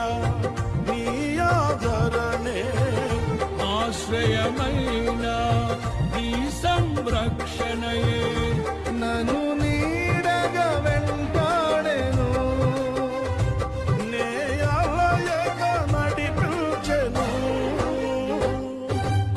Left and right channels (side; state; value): both; identical; correlation 1.00